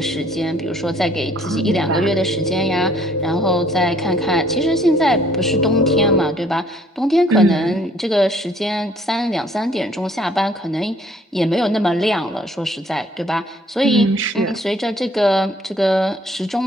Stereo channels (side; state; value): both; normal; correlation 0.60